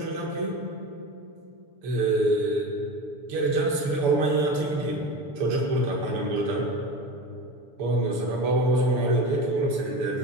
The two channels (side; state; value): left; late; 6.9 ms